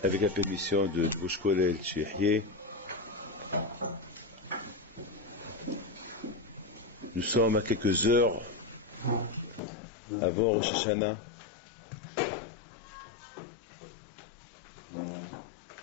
avec la permission de Drush Kolel Tchihieh, nous sommes à quelques heures avant Rosh Hashanah.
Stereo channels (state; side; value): drops out; right; at 9.6 s